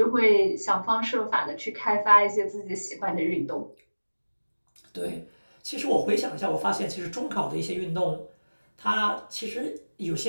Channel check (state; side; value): inverted; both; correlation -1.00